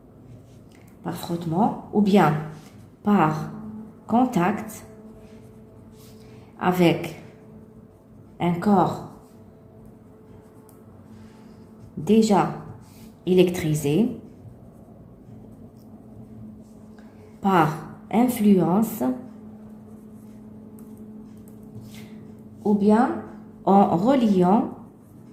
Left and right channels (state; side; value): identical; both; correlation 1.00